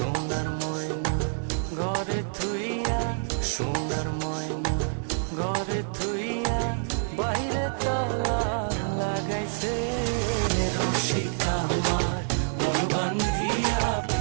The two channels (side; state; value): left; silent; digital silence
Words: ময়না ঘরে থুইয়া, সোনার ময়না ঘরে থুইয়া, বাইরে তালা লাগাইছে। রসিক আমার মন বান্ধিয়া